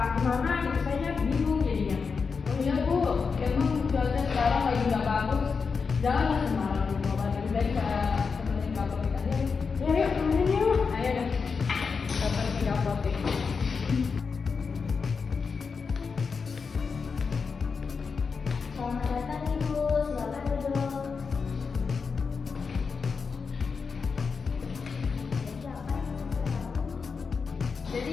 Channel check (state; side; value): quieter; right; 5.2 dB